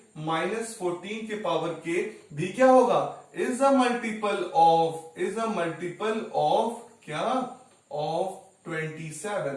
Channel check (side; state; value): both; identical; correlation 1.00